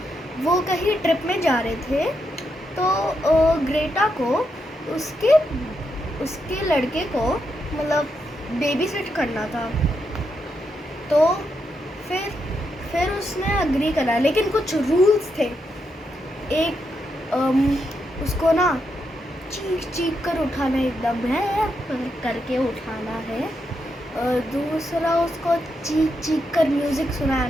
वो कहीं ट्रिप में जा रहे थे। तो ग्रेटा को उसके उसके लड़के को मतलब बेबी सिट करना था। तो फिर उसने अग्री करा, लेकिन कुछ रूल्स थे। एक उसको ना चीख चीख कर उठाना है, एकदम है करके उठाना है। दूसरा उसको चीख चीख कर म्यूज़िक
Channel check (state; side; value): normal; both; correlation 0.82